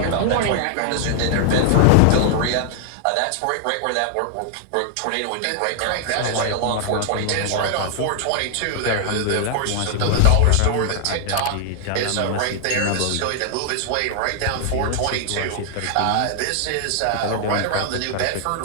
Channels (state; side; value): different; both; correlation 0.00